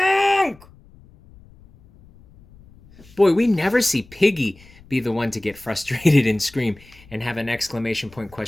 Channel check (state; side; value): noise; left; rumble, 25 dB below the sound